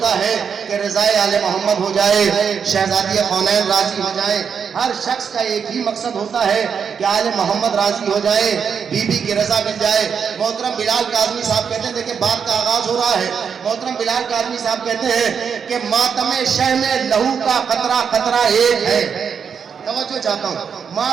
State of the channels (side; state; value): left; quieter; 6.8 dB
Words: ہے کہ رضائے آل محمد ہو جائے، شہزادی کونین راضی ہو جائے. ہر شخص کا ایک ہی مقصد ہوتا ہے کہ آل محمد راضی ہو جائے. بی بی کی رضا مل جائے. محترم بلال کاظمی صاحب کہتے ہیں، دیکھیں بات کا آغاز ہو رہا ہے. محترم بلال کاظمی صاحب کہتے ہیں کہ ماتم شہ میں لہو کا قطرہ قطرہ ایک ہے. توجہ چاہتا ہوں،